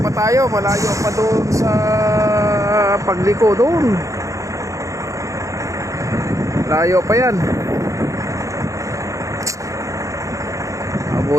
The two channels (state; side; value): late; left; 0.15 ms